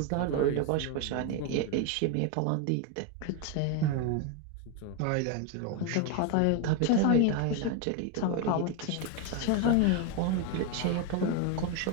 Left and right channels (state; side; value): different; both; correlation 0.01